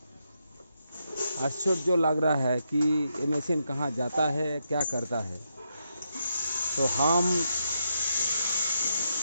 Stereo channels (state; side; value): inverted; both; correlation -0.81